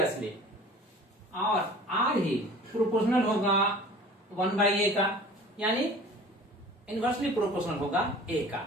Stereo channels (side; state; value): both; normal; correlation 0.44